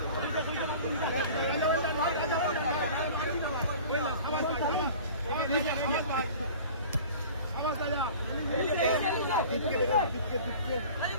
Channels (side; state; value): both; inverted; correlation -0.42